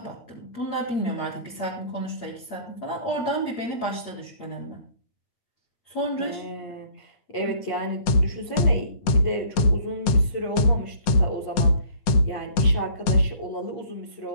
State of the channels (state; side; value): late; right; 9.8 ms